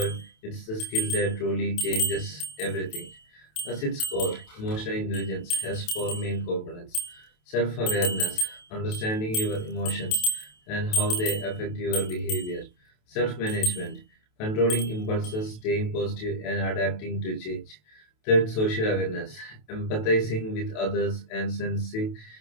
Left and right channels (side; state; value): right; late; 28 ms